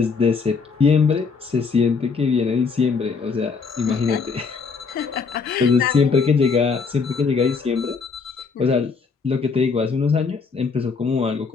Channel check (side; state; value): right; quieter; 5.0 dB